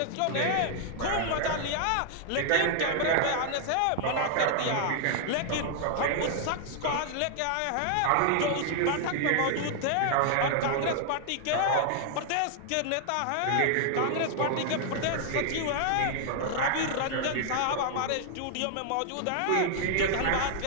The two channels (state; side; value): different; both; correlation 0.00